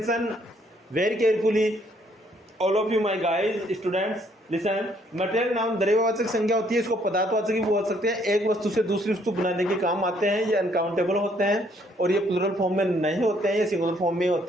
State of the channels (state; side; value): normal; both; correlation 0.67